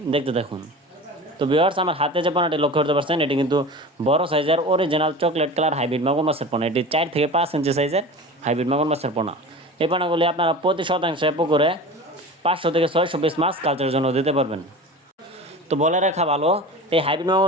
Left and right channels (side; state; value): both; normal; correlation 0.34